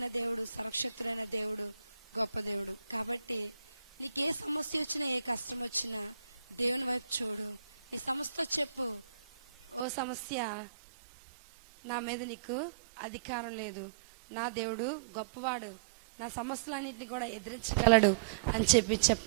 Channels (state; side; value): drops out; left; at 9.9 s